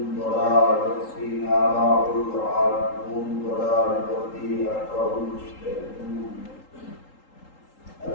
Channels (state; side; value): late; right; 3.8 ms